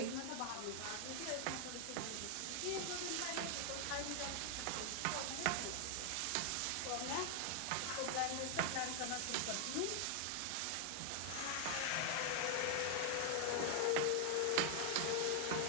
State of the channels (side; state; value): both; different; correlation 0.00